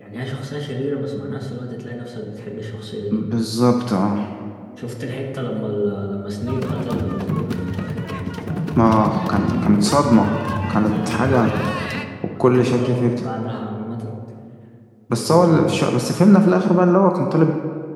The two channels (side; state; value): both; identical; correlation 1.00